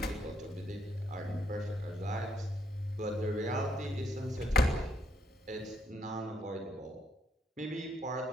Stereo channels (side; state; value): both; normal; correlation 0.74